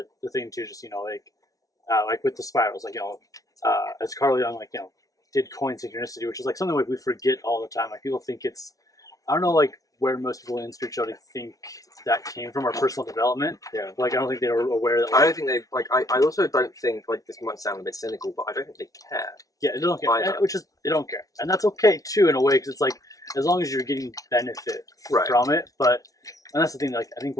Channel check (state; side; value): late; right; 0.17 ms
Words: thing too. Just, you know, like with the spirals, like, you know, as Carl Jung, like, you know, did coin synchronicity, which is like something like we forget all the time. Like, people think it's, I don't know, like, where most people in spirituality think that came from, our personal development. Yeah. Like, I don't think they were aware that. Like, I don't think they like. I also don't think, like, this might sound a bit cynical, but I don't think they care. Yeah, they don't care. Which is, they don't care, and that's okay too in a way, because it's like, as long as you're getting benefit from it. But, and that's the thing. Like, I think